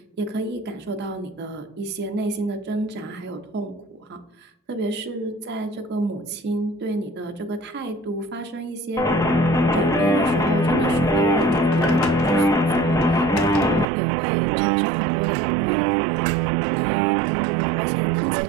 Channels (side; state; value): left; drops out; at 13.9 s